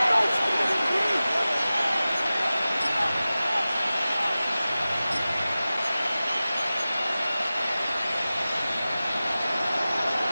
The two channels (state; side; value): inverted; both; correlation -0.96